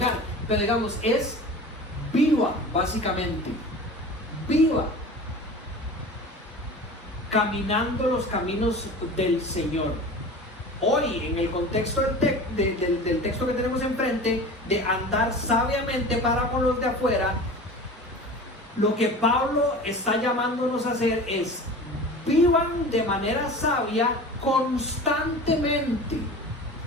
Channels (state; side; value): normal; both; correlation 0.36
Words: pero digamos, es viva, básicamente, viva, caminando los caminos del Señor. Hoy, en el contexto del texto que tenemos enfrente, de andar sabiamente para con los de afuera, lo que Pablo está llamándonos a hacer es: vivan de manera sabia constantemente